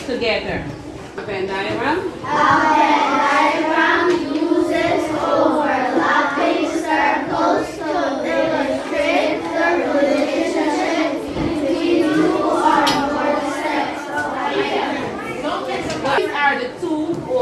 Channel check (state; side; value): identical; both; correlation 1.00